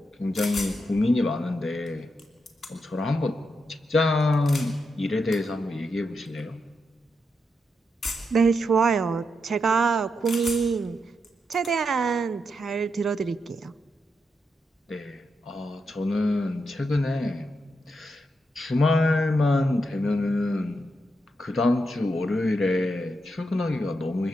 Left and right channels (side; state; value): both; normal; correlation 0.84